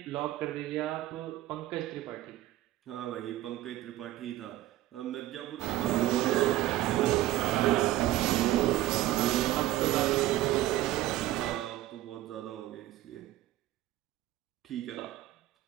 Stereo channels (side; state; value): left; quieter; 15.0 dB